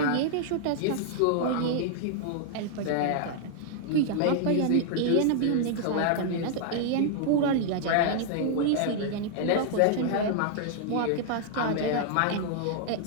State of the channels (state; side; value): different; both; correlation -0.01